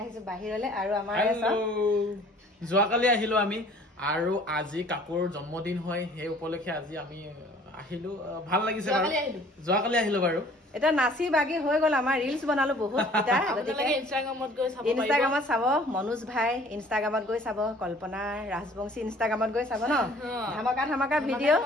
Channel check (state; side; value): normal; both; correlation 0.53